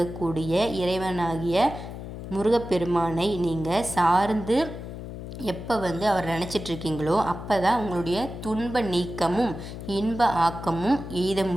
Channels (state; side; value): noise; left; hum, 10 dB below the sound